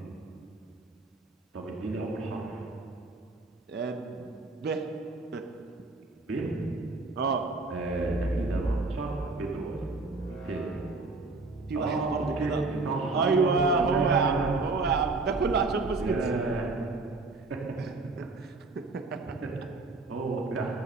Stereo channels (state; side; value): quieter; left; 3.5 dB